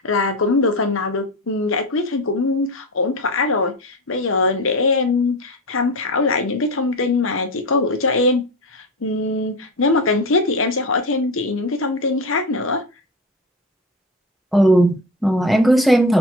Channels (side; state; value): both; normal; correlation 0.25